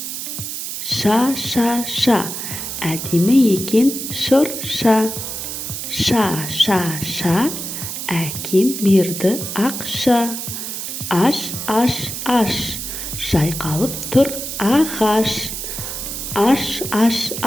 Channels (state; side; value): noise; right; hiss, 6 dB below the sound